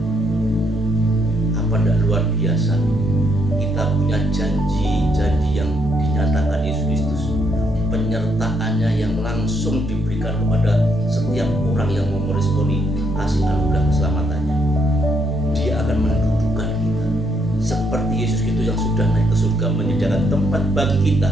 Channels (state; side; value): normal; both; correlation 0.74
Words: Apa tidak luar biasa? Kita punya janji-janji yang dinyatakan Yesus Kristus, penyertaannya yang langsung diberikan kepada setiap orang yang mau meresponi kasih anugerah keselamatannya. Dia akan mendudukkan kita seperti Yesus Kristus yang sudah naik ke surga menyediakan tempat bagi kita.